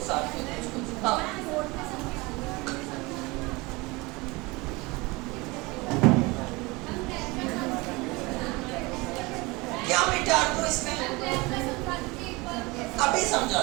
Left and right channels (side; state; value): left; quieter; 24.2 dB